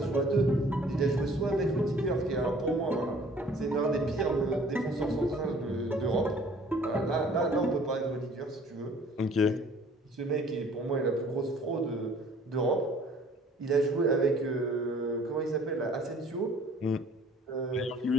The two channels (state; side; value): normal; both; correlation 0.53